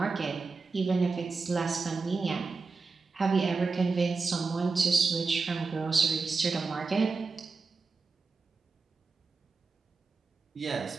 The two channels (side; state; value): left; quieter; 4.3 dB